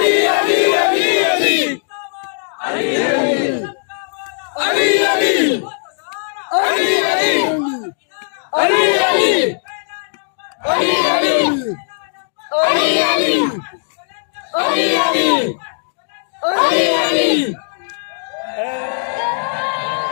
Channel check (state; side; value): silent; right; 68 dB below the other